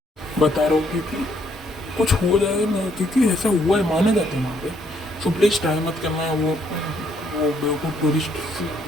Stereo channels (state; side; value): normal; both; correlation 0.70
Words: बता रहा हूँ क्योंकि कुछ हो जाए ना, क्योंकि ऐसा हुआ है, माने जाते हैं वहाँ पे। सो प्लीज़ ट्राई मत करना है। वो बेवकूफ़ टूरिस्ट